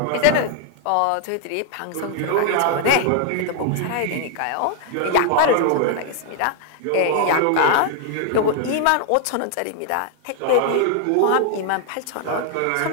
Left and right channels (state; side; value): different; both; correlation 0.00